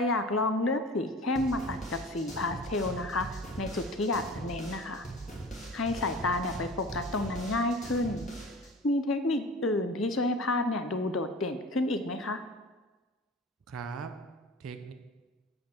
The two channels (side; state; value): both; normal; correlation 0.39